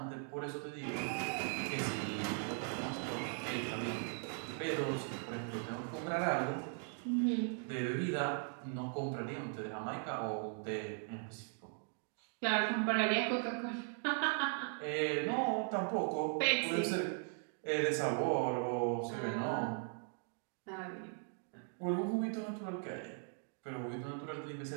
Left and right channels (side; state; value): left; silent; 52 dB below the other